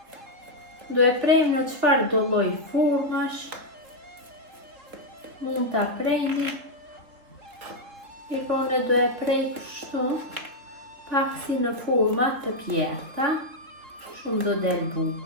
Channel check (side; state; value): left; late; 3.4 ms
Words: Do e prejmë në çfarë do lloj formash. Mund ta prejni. Ikone do e prej kështu, pak si në forma të pjerta, shumë do del